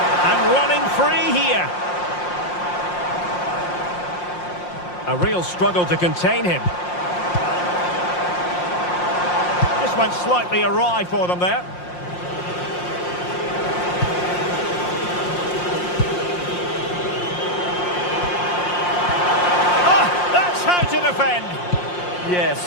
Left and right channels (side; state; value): right; late; 5.6 ms